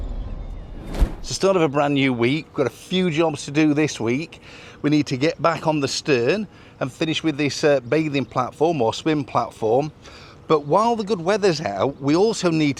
It's the start of a brand new week. We've got a few jobs to do this week. We need to get back on the stern and finish with this bathing platform or swim platform. But while the good weather's out, we also need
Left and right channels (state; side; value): identical; both; correlation 1.00